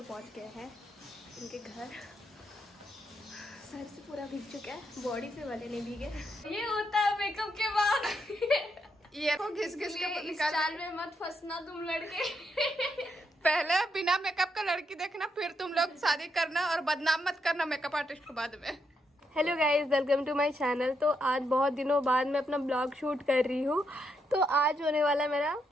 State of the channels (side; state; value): both; normal; correlation 0.79